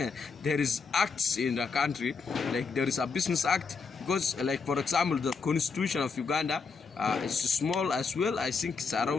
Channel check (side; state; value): right; quieter; 5.0 dB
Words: there is acts in the country. Like there is a business act, because like for example, the constitution of Uganda is small as well. I think it's